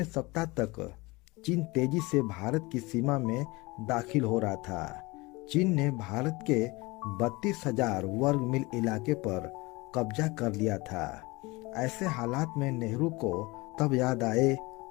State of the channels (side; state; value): right; quieter; 23.5 dB